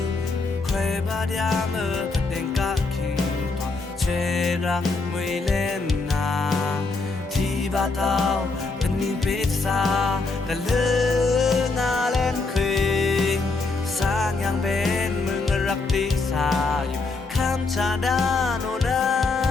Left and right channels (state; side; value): quieter; right; 3.7 dB